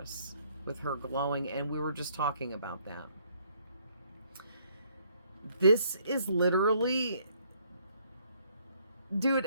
with her glowing, and we were just talking about that. This is literally, dude,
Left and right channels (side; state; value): both; inverted; correlation -0.66